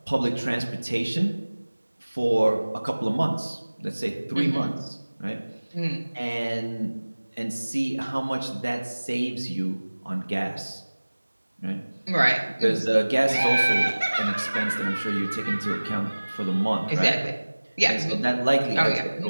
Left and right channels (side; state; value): both; inverted; correlation -1.00